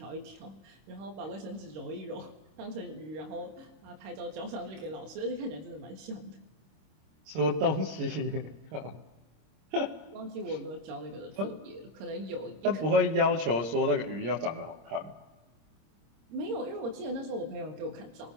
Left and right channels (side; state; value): left; late; 26 ms